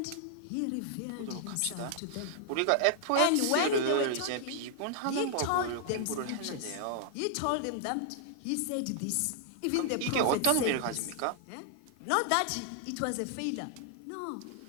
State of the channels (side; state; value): both; different; correlation 0.00